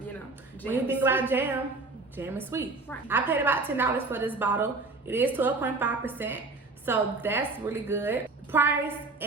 Jam when you think about jam is sweet. Right. I paid about $10 for this bottle. It is 12.5%, so that's really good. Price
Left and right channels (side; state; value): left; quieter; 3.6 dB